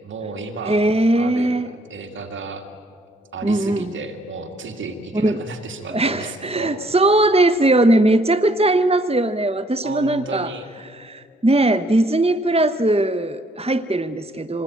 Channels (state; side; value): normal; both; correlation 0.65